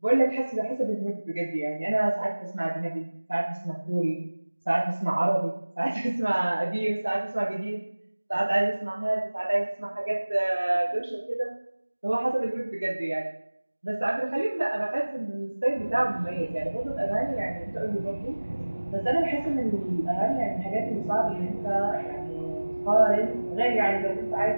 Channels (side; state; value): both; inverted; correlation -1.00